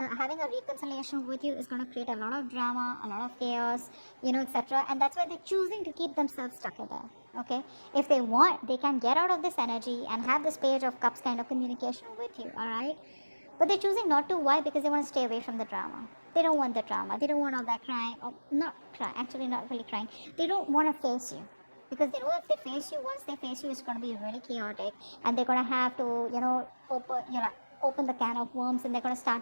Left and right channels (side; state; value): both; inverted; correlation -1.00